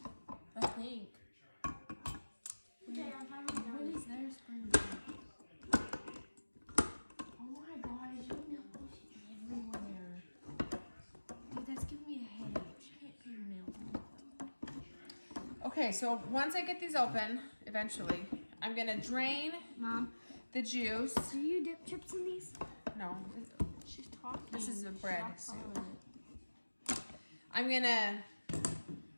I think. Okay, I'm finally done. When is their spring break? Oh my gosh, you know everywhere. Okay, so once I get these open, eventually, I'm gonna drain Mom, the juice. do you dip chips in these? No, She's talking. this is a bread Stop soup. calling I'm gonna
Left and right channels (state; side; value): inverted; both; correlation -1.00